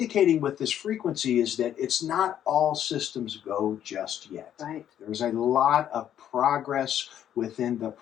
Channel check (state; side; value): quieter; right; 10.4 dB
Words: with this frequency is that it's not all systems go just yet. There's a lot of progress within the